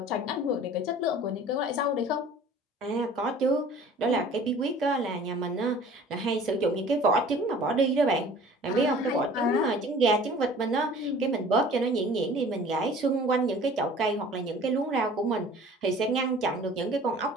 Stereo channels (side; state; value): both; normal; correlation 0.47